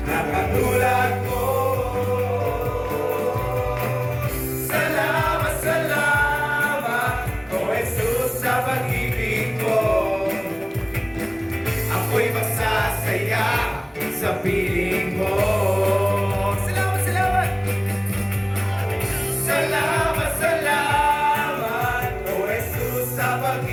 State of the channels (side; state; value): both; identical; correlation 1.00